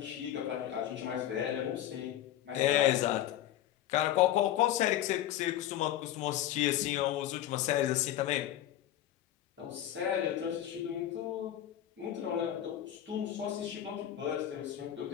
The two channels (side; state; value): right; quieter; 12.2 dB